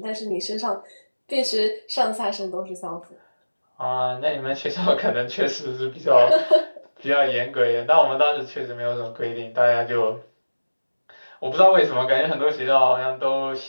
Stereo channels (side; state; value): both; inverted; correlation -1.00